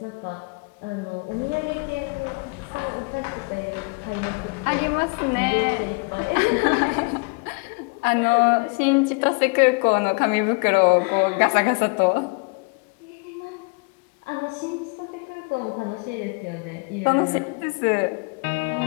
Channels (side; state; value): right; quieter; 32.8 dB